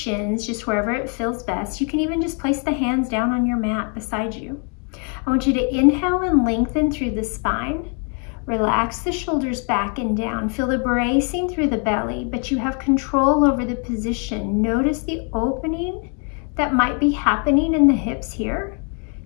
just wherever it feels best. You can even just place the hands down on your mat beside you. I want you to inhale and lengthen through the spine. Relax the shoulders back and down. Feel the bracing through the belly, but you have control over the position. Notice the opening that might be happening in the hips here.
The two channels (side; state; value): right; quieter; 39.3 dB